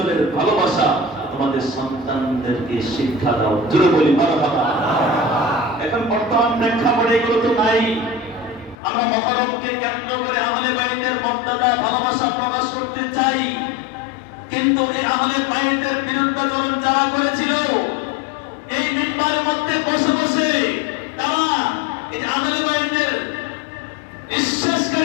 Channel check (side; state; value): right; drops out; at 8.8 s